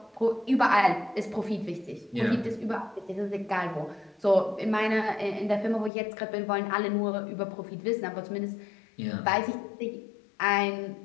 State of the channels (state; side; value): drops out; right; at 5.9 s